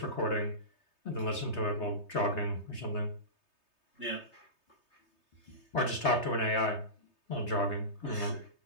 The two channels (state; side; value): late; right; 3.3 ms